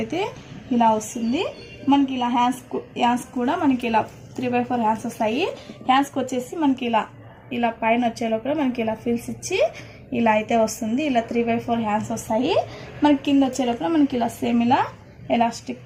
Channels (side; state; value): both; identical; correlation 1.00